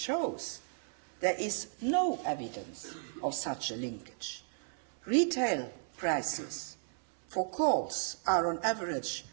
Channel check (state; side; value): silent; left; 55 dB below the other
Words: there is no evidence of such a linkage. Retail prices for calls are on average